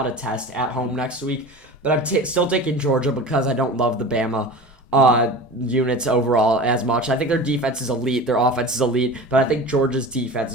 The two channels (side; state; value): both; normal; correlation 0.34